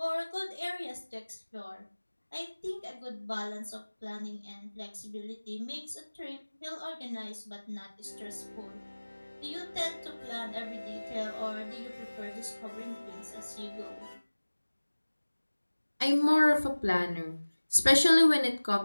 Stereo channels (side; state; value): both; inverted; correlation -1.00